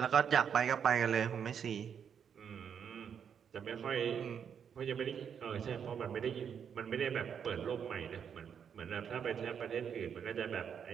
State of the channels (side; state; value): left; quieter; 7.6 dB